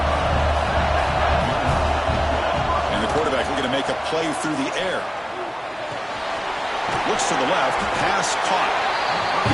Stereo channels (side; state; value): both; identical; correlation 1.00